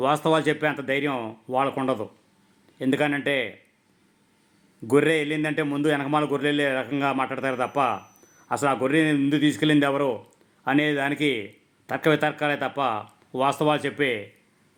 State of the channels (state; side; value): identical; both; correlation 1.00